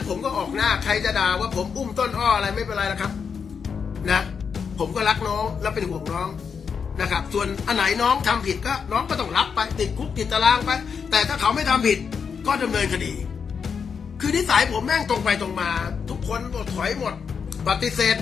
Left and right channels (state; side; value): quieter; right; 6.3 dB